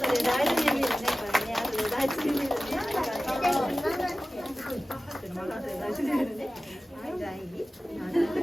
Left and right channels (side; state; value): both; normal; correlation 0.96